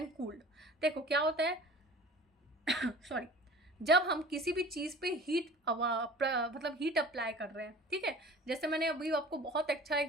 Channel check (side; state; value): both; normal; correlation 0.44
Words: cooled. देखो क्या होता है सॉरी, जब हम किसी भी चीज़ पे मतलब हीट अप्लाई कर रहे हैं, ठीक है। जैसे मैंने अभी आपको बहुत अच्छा